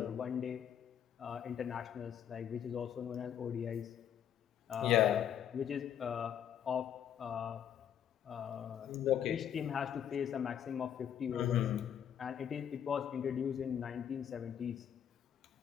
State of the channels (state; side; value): quieter; right; 9.3 dB